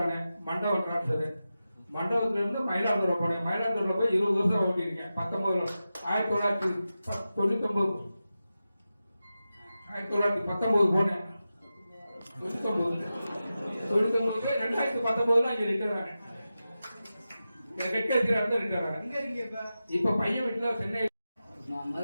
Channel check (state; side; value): inverted; both; correlation -0.93